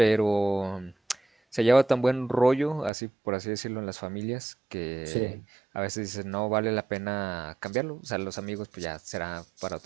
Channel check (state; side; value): drops out; left; at 2.9 s